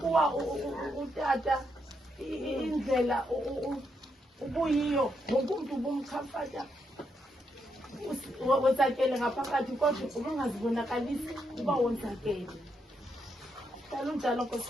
utata indlela ubuyiyo wonke umuntu ubumchamfata wonzakele ngaphakathi kodwa ubungazibonakalisi uba wonzakele. Dala unjalo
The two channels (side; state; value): both; normal; correlation 0.80